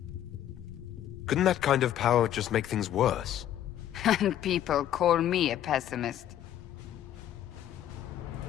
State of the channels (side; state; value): right; quieter; 11.4 dB